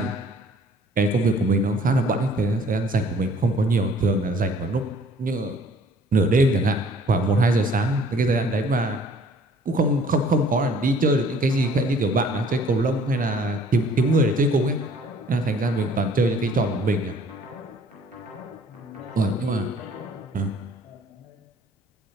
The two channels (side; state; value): both; normal; correlation 0.56